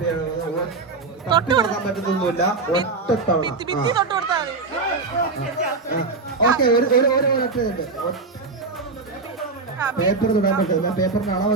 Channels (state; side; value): quieter; left; 4.0 dB